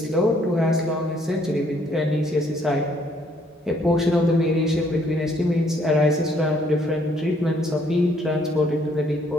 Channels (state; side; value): normal; both; correlation 0.66